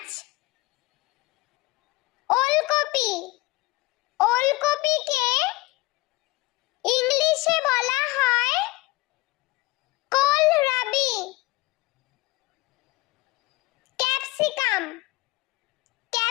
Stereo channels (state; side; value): quieter; right; 21.3 dB